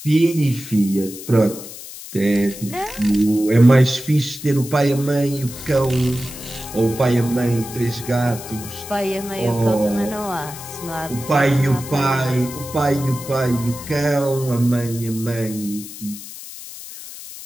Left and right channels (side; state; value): left; noise; hiss, 13 dB below the sound